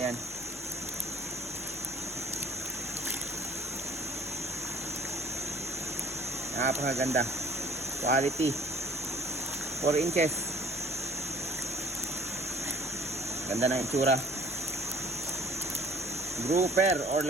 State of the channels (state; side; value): normal; both; correlation 0.55